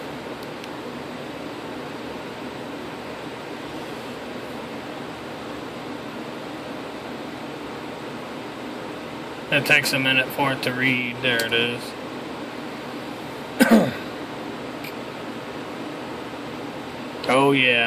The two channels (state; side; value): identical; both; correlation 1.00